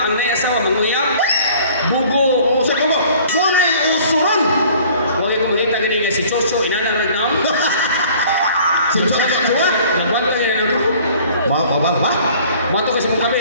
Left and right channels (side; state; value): both; inverted; correlation -0.52